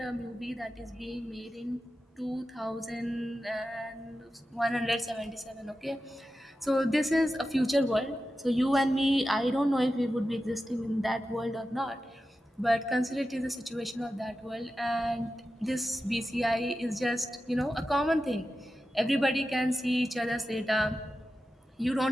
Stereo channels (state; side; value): normal; both; correlation 0.92